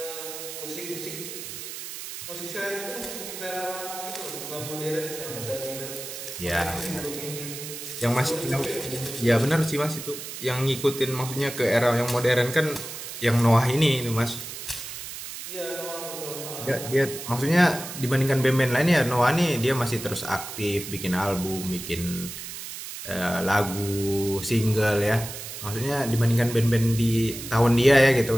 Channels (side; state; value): right; noise; hiss, 9 dB below the sound